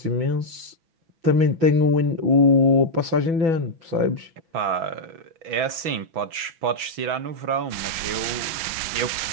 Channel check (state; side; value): late; left; 6.1 ms